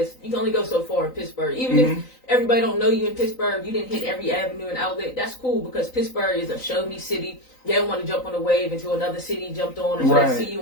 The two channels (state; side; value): late; right; 3.9 ms